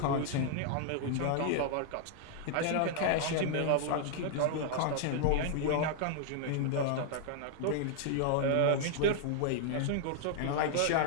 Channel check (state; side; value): different; both; correlation -0.01